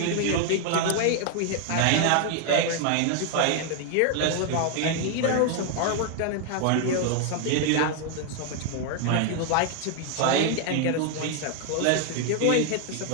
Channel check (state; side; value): different; both; correlation 0.00